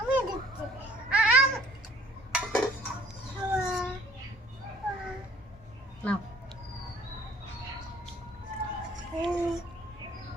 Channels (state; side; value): normal; both; correlation 0.55